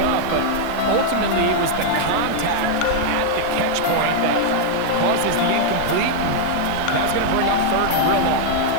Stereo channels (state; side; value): different; both; correlation -0.01